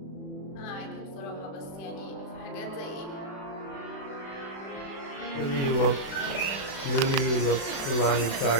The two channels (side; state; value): right; late; 36 ms